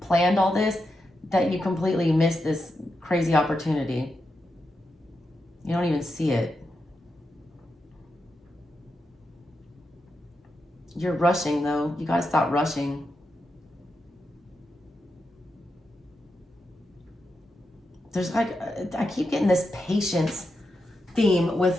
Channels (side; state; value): both; normal; correlation 0.87